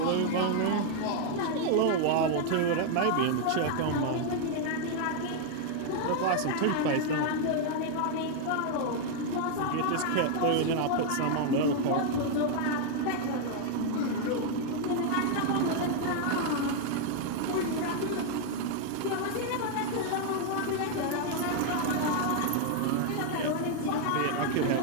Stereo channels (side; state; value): both; different; correlation 0.00